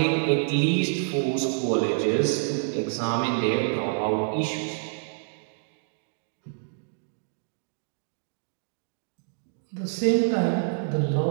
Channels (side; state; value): left; silent; digital silence